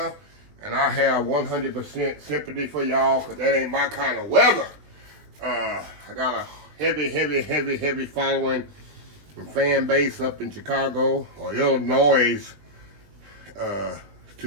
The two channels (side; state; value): left; late; 20 ms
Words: And I have 100% sympathy for y'all, because that ain't my kind of weather. I got a heavy following and fan base up in Chicago or Illinois,